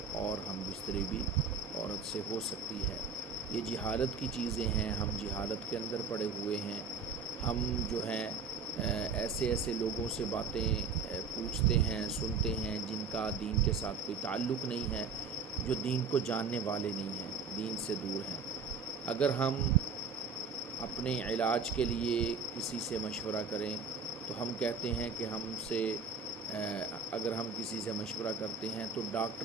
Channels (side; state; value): left; quieter; 5.1 dB